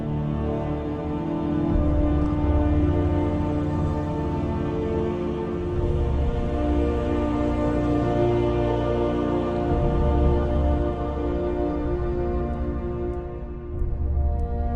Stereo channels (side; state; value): both; identical; correlation 1.00